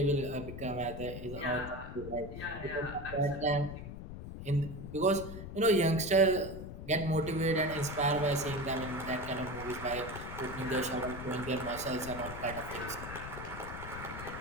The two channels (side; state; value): left; noise; rumble, 9 dB below the sound